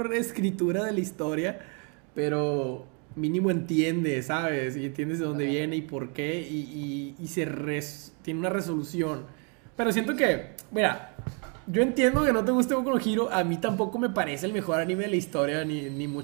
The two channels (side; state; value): left; quieter; 36.8 dB